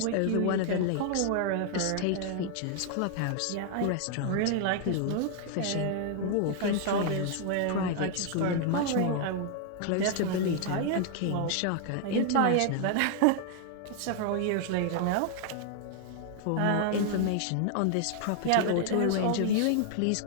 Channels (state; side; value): different; both; correlation 0.00